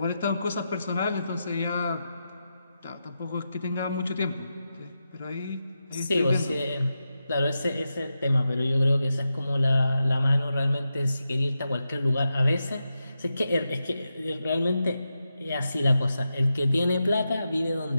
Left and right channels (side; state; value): both; inverted; correlation -0.88